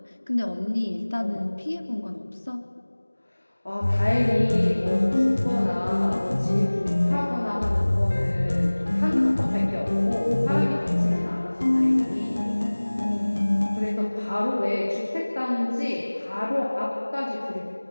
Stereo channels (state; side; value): inverted; both; correlation -1.00